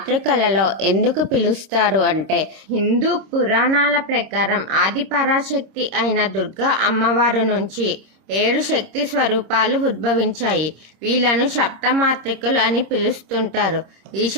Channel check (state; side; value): late; left; 26 ms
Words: ఎందుకు పిలుస్తారు అంటే, హిందూ పురాణాల ప్రకారం ఆది పరాశక్తి అయిన దుర్గా అమ్మవారు నుంచి 7 శక్తి స్వరూపాలు ఉద్భవించాయి. వీళ్ళను సప్తమాతృకలు అని పిలుస్తుంటారు. ఈ